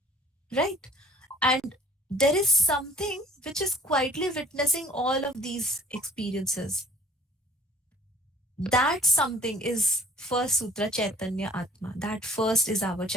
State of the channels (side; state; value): both; normal; correlation 0.53